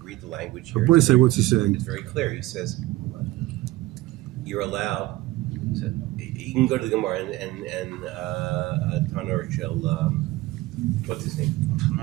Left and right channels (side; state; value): left; quieter; 18.2 dB